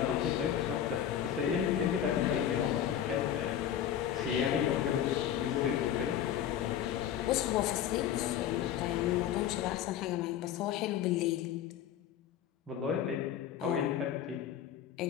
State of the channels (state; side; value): quieter; right; 10.1 dB